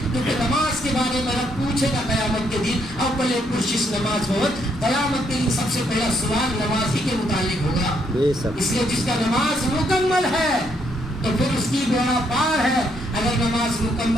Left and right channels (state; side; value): normal; both; correlation 0.73